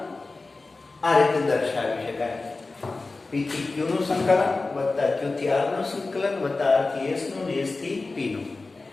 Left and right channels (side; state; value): right; quieter; 3.6 dB